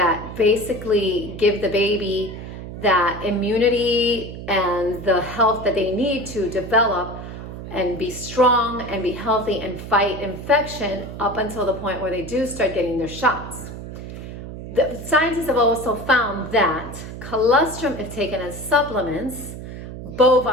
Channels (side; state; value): right; noise; hum, 10 dB below the sound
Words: basically give the baby that immunity and the health that they need to develop and be strong and be healthy and fight infection up until the point where they do start getting their shots. The scientists have also found that colostrum, if taken as supplements,